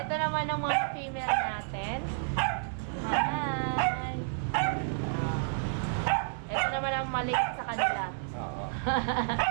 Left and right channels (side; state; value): left; silent; 57 dB below the other